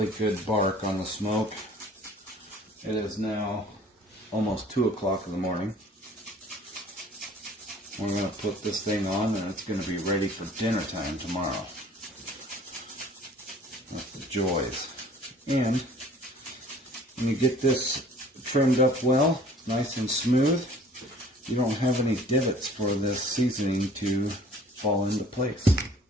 good bark on the smoke. It is now almost 2 o'clock in the morning. We're going to put this thing on and it's going to be ready for dinner time tomorrow. That's the joys. And when you get this trimmed up well, nice and smooth, you don't have any divots for this seasoning to fall into place.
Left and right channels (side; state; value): both; normal; correlation 0.51